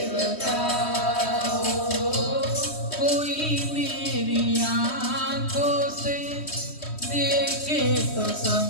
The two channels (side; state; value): right; late; 3.1 ms